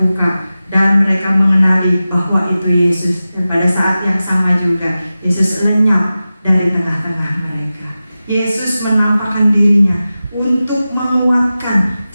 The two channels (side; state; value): both; inverted; correlation -0.95